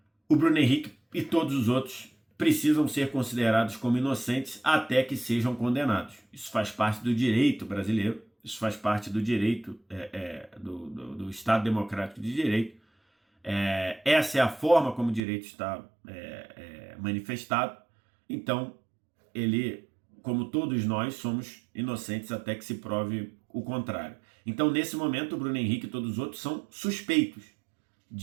o Bruno Henrique e todos os outros precisam ser considerados como inocentes até que sejam condenados. Isso faz parte do direito brasileiro, isso faz parte do direito do Estado Democrático de Direito. Essa é a forma como o direito está manifestado. Então, ele, como todos nós, somos inocentes até que se prove o contrário. Então, nesse momento, o Bruno Henrique e todos os outros são suspeitos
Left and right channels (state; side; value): drops out; left; at 15.2 s